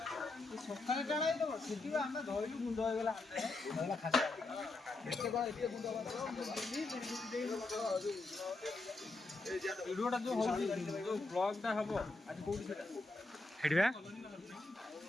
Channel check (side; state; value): right; quieter; 3.2 dB